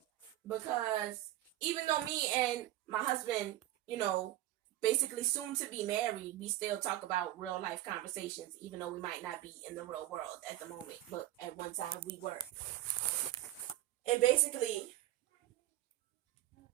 Because even though me and my husband, basically soon to be married, we still talk about real life conversations, even though we might not be in the real world at the moment, but at one time we were. And basically,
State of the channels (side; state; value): left; quieter; 14.9 dB